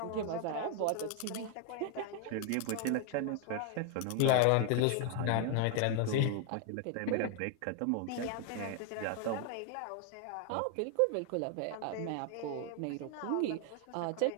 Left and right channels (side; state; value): both; different; correlation 0.00